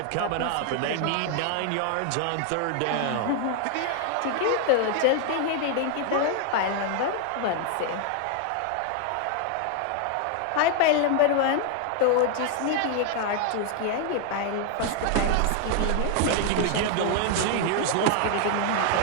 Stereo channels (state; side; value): different; both; correlation 0.00